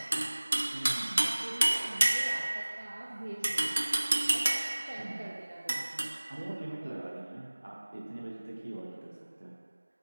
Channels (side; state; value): both; inverted; correlation -1.00